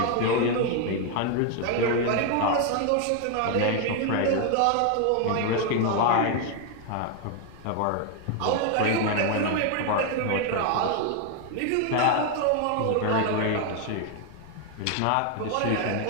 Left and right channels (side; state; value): both; different; correlation 0.01